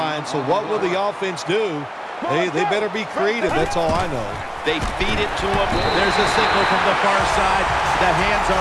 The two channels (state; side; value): identical; both; correlation 1.00